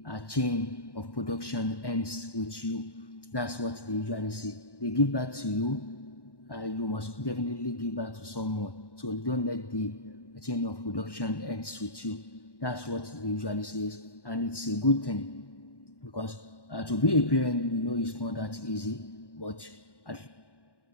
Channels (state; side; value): late; right; 1.1 ms